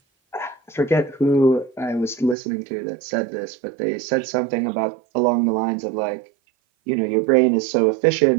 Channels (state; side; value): drops out; left; at 2.4 s